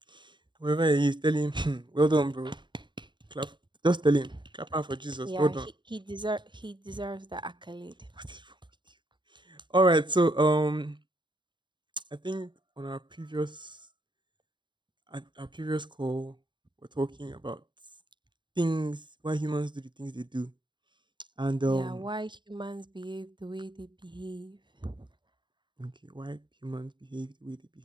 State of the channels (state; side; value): late; left; 0.23 ms